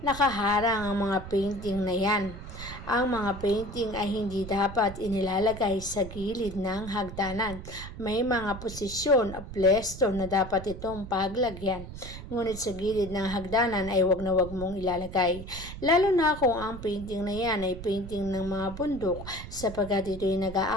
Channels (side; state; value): right; noise; rumble, 11 dB below the sound